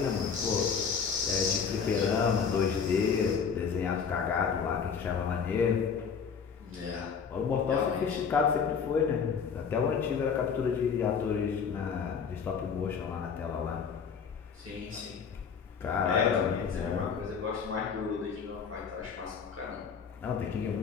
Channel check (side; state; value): right; quieter; 6.4 dB